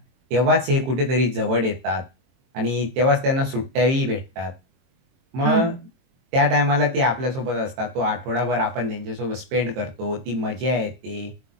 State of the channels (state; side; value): late; left; 23 ms